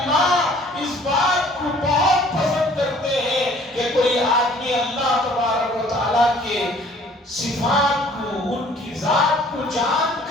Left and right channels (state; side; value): normal; both; correlation 0.55